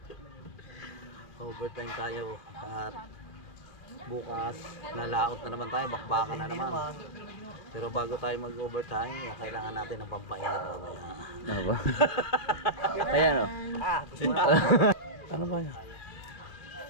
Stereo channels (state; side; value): late; right; 2.5 ms